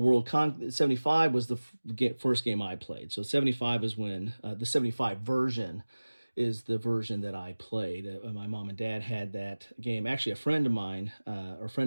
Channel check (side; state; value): both; inverted; correlation -1.00